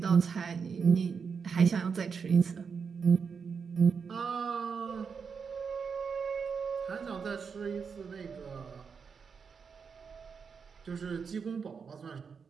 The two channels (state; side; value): quieter; left; 5.9 dB